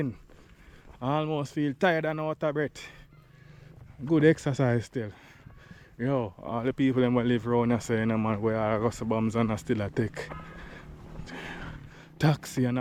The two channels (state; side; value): identical; both; correlation 1.00